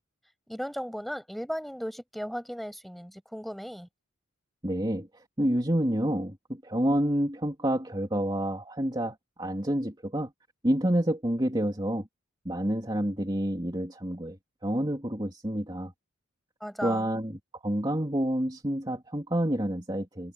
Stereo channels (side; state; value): both; normal; correlation 0.86